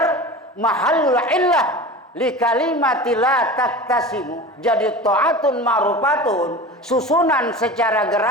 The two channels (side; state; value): both; normal; correlation 0.34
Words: mahallul illah li kalimati la taktasimu. Jadi ta'atun ma'rufatun susunan secara